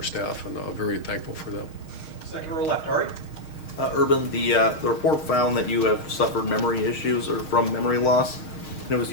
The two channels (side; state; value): right; late; 6.4 ms